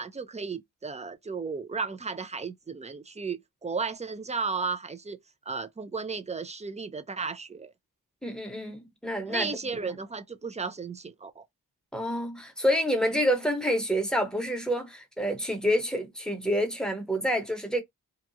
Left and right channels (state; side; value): normal; both; correlation 0.55